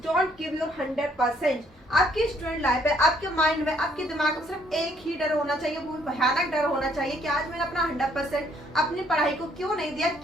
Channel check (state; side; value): normal; both; correlation 0.67